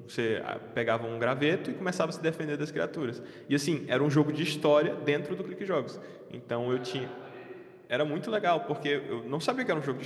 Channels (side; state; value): both; identical; correlation 1.00